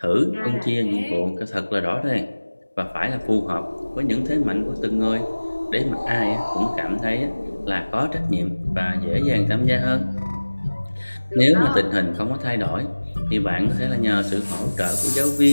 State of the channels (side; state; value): both; inverted; correlation -1.00